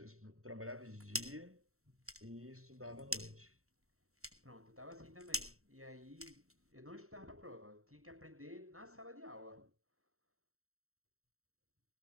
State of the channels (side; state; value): left; late; 0.63 ms